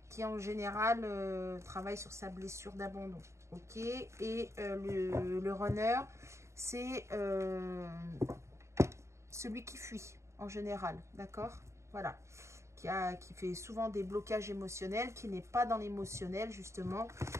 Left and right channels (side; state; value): left; late; 0.14 ms